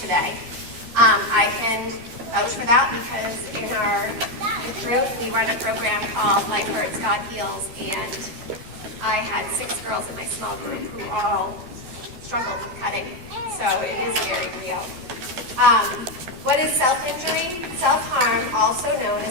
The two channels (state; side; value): late; left; 12 ms